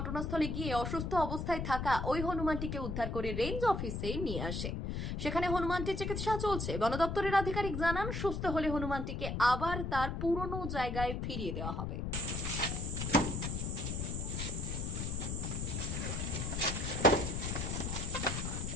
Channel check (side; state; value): left; noise; rumble, 3 dB below the sound